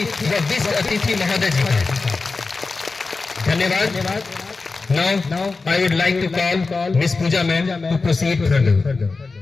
व विशिष्ट अतिथि महोदय जी का। धन्यवाद। Now I would like to call Miss Pooja ma'am to proceed further.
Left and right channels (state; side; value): quieter; right; 4.0 dB